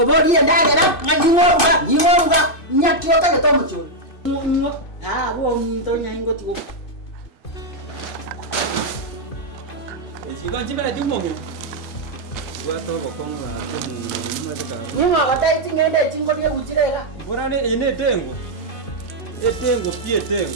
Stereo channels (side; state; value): right; late; 2.5 ms